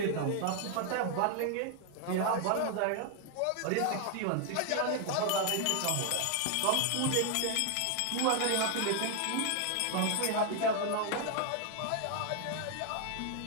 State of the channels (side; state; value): both; different; correlation 0.00